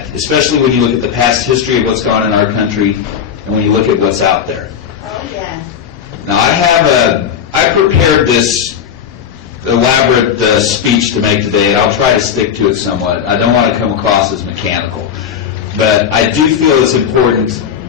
especially when you look at the past history of what's gone on in our country and when you look at what's out there. Oh, yeah. Now, I prepared this elaborate speech to make today, and I'll try to stick to it somewhat. I don't want to come across as mechanical, but I do feel it's important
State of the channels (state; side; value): quieter; right; 8.2 dB